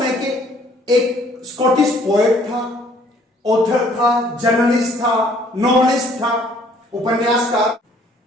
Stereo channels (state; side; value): normal; both; correlation 0.60